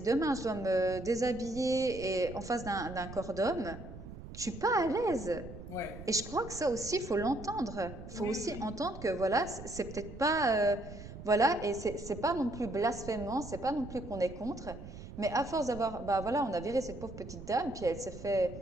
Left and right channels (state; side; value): noise; right; rumble, 12 dB below the sound